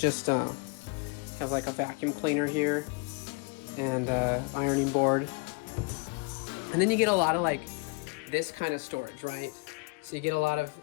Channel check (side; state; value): right; quieter; 30.9 dB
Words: have like a vacuum cleaner here and ironing board. And then you get a lot of like this kind of storage, right? So you get a lot of